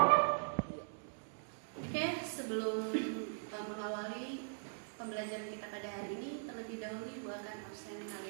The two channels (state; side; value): silent; left; 51 dB below the other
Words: Oke, sebelum mengawali pembelajaran kita pada hari ini, terlebih dahulu Ibu akan absen